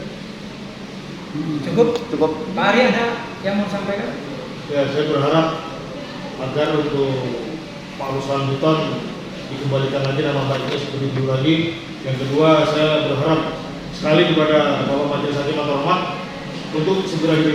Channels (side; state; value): both; identical; correlation 1.00